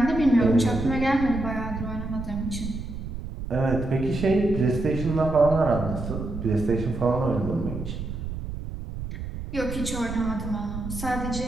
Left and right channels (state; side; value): noise; right; rumble, 7 dB below the sound